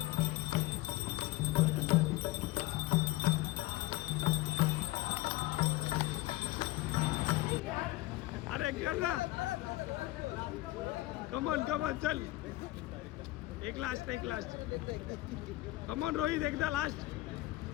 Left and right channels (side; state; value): right; quieter; 18.3 dB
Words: अरे कर ना, कमॉन कमॉन चल. एक लास्ट कमॉन रोहित, एकदा लास्ट.